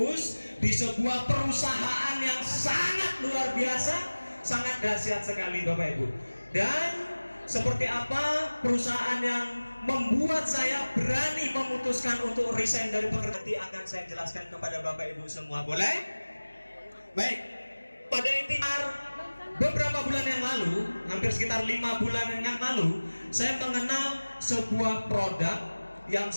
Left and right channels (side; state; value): both; inverted; correlation -1.00